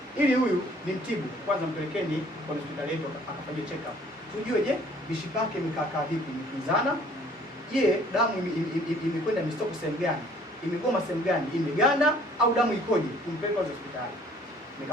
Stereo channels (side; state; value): both; normal; correlation 0.56